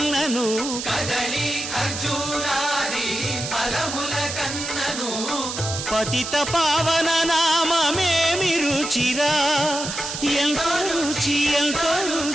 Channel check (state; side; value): noise; right; hiss, 6 dB below the sound